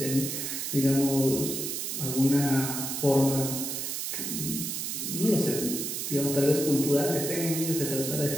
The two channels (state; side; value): noise; right; hiss, 3 dB below the sound